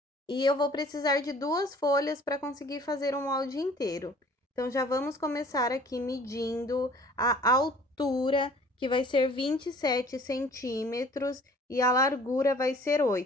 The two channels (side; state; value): both; normal; correlation 0.52